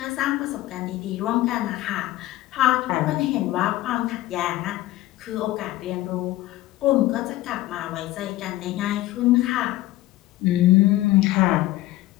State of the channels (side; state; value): right; quieter; 16.3 dB